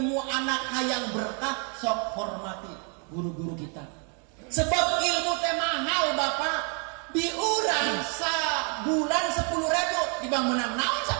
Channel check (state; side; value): quieter; left; 37.9 dB